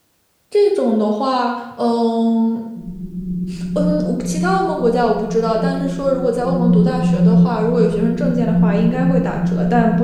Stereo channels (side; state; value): both; identical; correlation 1.00